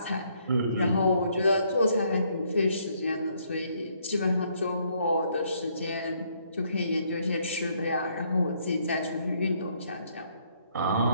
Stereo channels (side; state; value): both; inverted; correlation -0.69